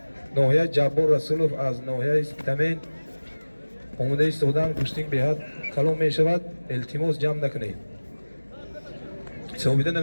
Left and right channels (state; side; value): inverted; both; correlation -1.00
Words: ناحیه جبار رسولوف از ناحیه تمین آمده ایستادن. گوشتین بهت کلام می شود. التماس جمع نکنید. ثابیده